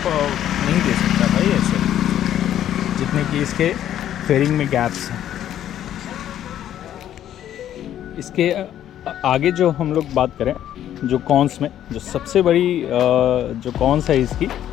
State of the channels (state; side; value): quieter; right; 11.2 dB